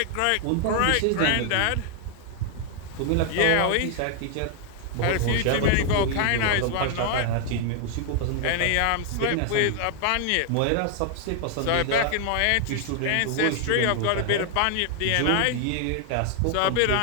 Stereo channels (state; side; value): different; both; correlation 0.00